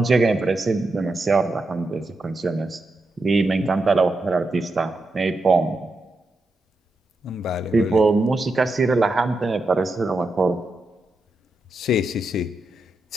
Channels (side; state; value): both; normal; correlation 0.88